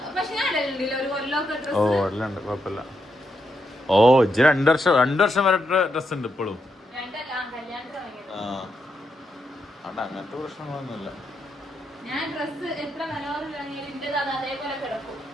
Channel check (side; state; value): both; normal; correlation 0.82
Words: ഓ ഇടലുണ്ട്, കുഴപ്പമില്ല. ഓ ഇജ്ജ് 2 വർഷം വരെ ഡ്രസ് ഉണ്ട് ഇപ്പോഴും. അങ്ങനത്തെ പ്രശ്നങ്ങളൊന്നുമില്ല. ഞാൻ ഡ്രസ് എത്ര അതേപോലെ കിടക്കും.